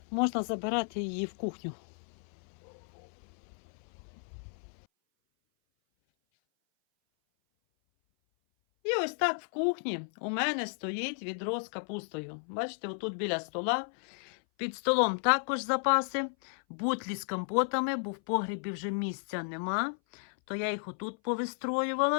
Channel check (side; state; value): right; silent; 56 dB below the other